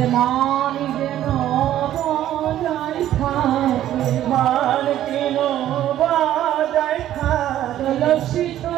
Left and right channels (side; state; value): left; quieter; 12.4 dB